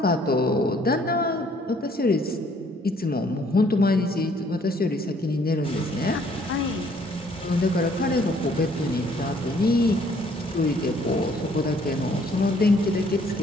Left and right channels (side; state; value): both; normal; correlation 0.62